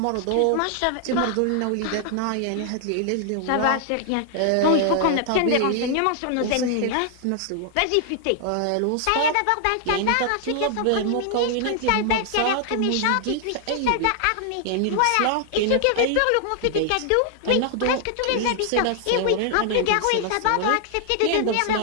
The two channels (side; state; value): both; different; correlation 0.00